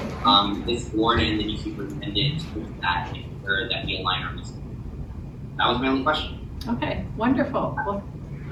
this board and the new superintendent to look at that and ensure that we align our goals. That was my only question. Okay, wonderful. Well,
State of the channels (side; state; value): both; identical; correlation 1.00